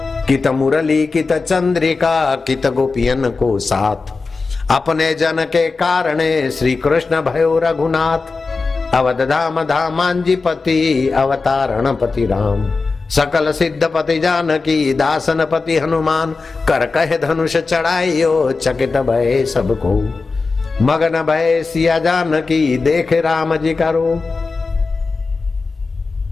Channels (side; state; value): right; quieter; 4.1 dB